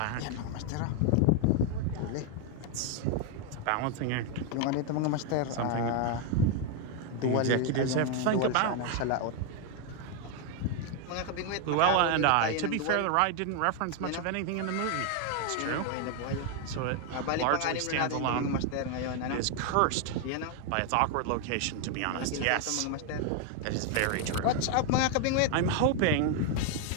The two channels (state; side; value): different; both; correlation 0.01